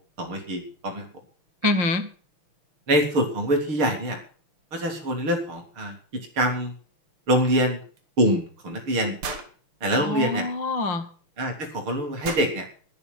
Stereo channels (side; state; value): left; late; 6.5 ms